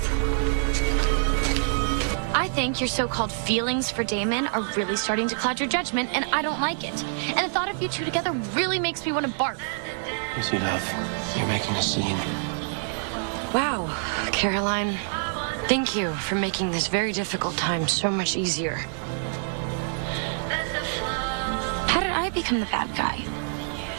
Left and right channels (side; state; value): left; silent; 61 dB below the other